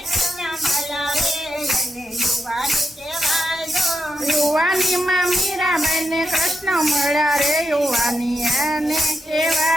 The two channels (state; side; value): normal; both; correlation 0.85